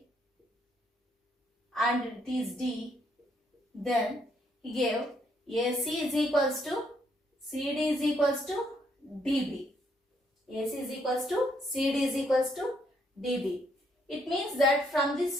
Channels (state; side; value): normal; both; correlation 0.72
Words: and it is D, then he gave AC is equals to CD is equals to DB. AC is equals to CD is equals to DB. It means that from